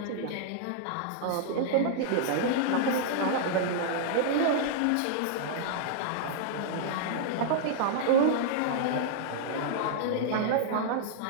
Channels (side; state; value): both; different; correlation -0.01